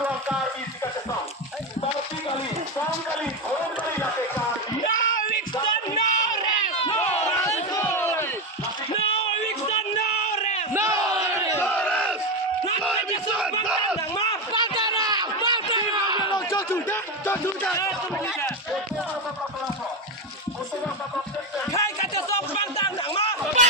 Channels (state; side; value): normal; both; correlation 0.12